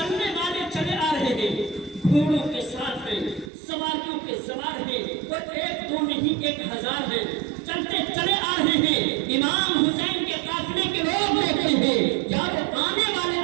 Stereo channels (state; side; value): drops out; left; at 3.5 s